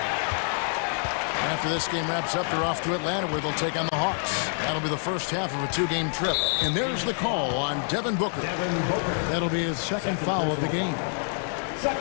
After this game wraps up, they're off to Atlanta where they'll take on the Hawks. That'll be the first half of a 2-game trip. And there's the call on Devin Booker. That'll be his second foul of the game.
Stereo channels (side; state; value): right; silent; 59 dB below the other